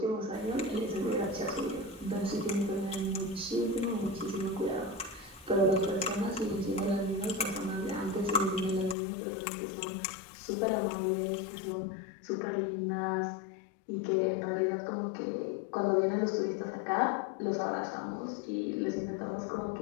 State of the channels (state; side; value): drops out; right; at 9.0 s